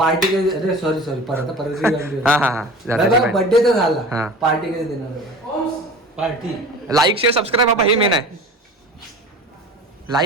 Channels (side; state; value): both; normal; correlation 0.37